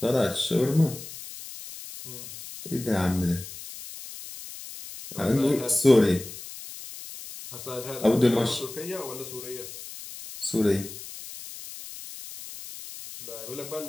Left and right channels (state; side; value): noise; left; hiss, 13 dB below the sound